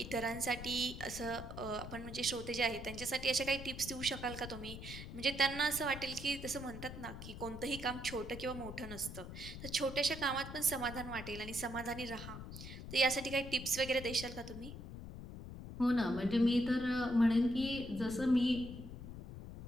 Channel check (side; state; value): left; noise; rumble, 10 dB below the sound